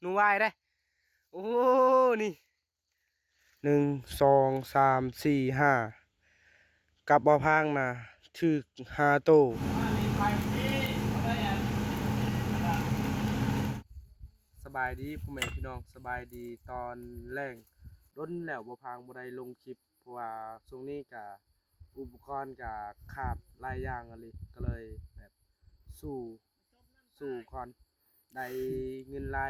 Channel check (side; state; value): both; identical; correlation 1.00